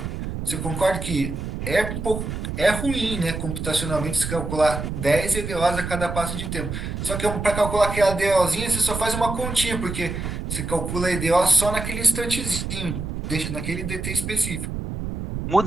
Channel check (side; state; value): right; noise; rumble, 5 dB below the sound